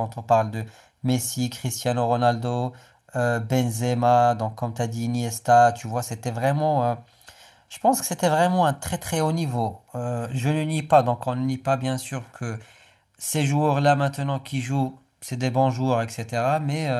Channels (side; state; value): both; identical; correlation 1.00